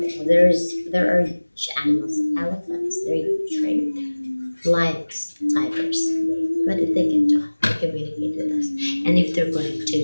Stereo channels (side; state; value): both; inverted; correlation -1.00